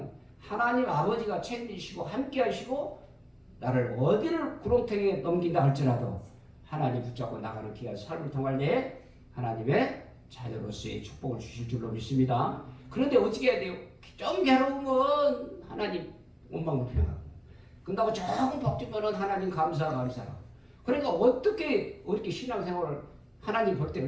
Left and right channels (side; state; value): both; identical; correlation 1.00